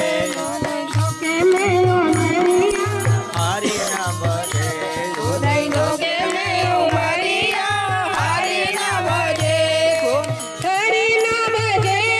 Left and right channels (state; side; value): identical; both; correlation 1.00